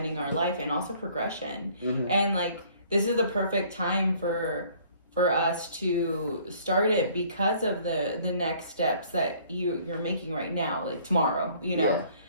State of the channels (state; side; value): inverted; both; correlation -0.57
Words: our life and also progression, and like this is the perfect time for us to start it because of the next steps that you're making right now, like tomorrow,